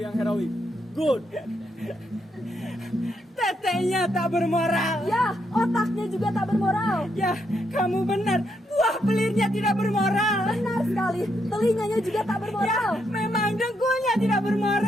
heroik. Good. Tetenya tak bermoral. Ya, otaknya juga tak bermoral. Ya, kamu benar. Buah pelirnya tidak bermoral. Benar sekali, telinganya juga tak bermoral. Ya, memang dengkulnya tidak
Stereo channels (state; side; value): normal; both; correlation 0.78